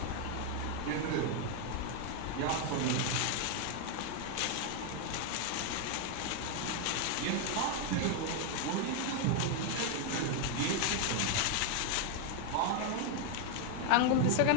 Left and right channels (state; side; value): different; both; correlation 0.00